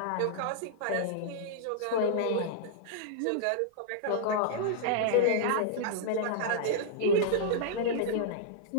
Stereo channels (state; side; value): different; both; correlation -0.01